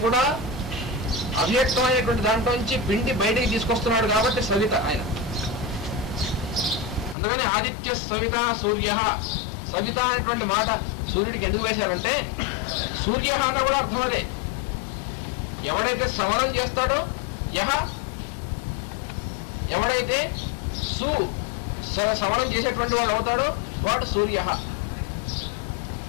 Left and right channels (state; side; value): drops out; right; at 7.2 s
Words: కూడా అవ్యక్తమైనటువంటి దాంట్లో నుంచి పిండి బయటికి తీసుకొస్తున్నాడు కాబట్టి సవిత ఆయన. అందుకని ఆదిత్య సవిత సూర్య, సవిత అనేటువంటి మాట సూర్యుడికి ఎందుకు వేశారంటే సూర్య అన్న కూడా అర్థం అదే. ఎవడైతే సవరం చేస్తాడో యహ, ఎవడైతే సవరం చేసేటువంటి వాడు అవుతాడో వాడు సూర్య.